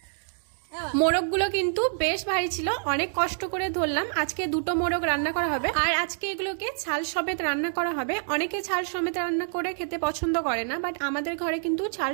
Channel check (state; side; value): silent; left; digital silence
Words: মোরগগুলো কিন্তু বেশ ভারী ছিল, অনেক কষ্ট করে ধরলাম। আজকে দুটো মোরগ রান্না করা হবে, আর আজকে এগুলোকে ছাল সমেত রান্না করা হবে। অনেকে ছাল সমেত রান্না করে খেতে পছন্দ করে না, বাট আমাদের ঘরে কিন্তু ছাল